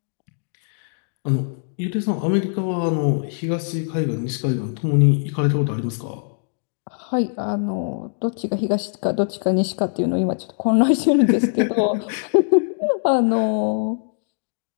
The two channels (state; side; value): silent; right; digital silence